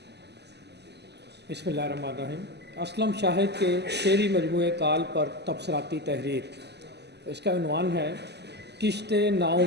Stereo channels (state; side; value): late; left; 0.49 ms